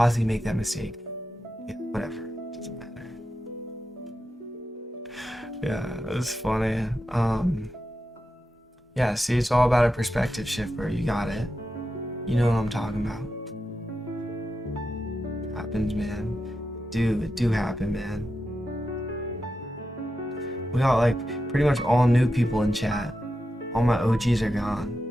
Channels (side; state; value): both; normal; correlation 0.89